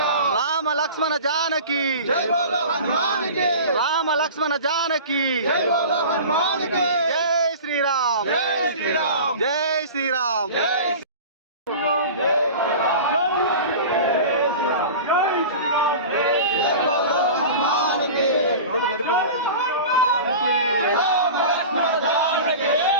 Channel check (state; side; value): inverted; both; correlation -0.35